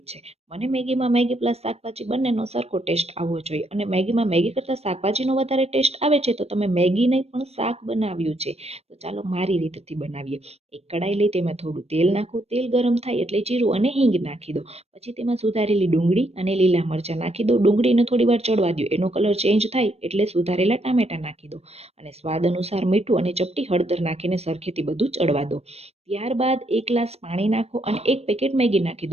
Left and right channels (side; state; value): left; late; 0.30 ms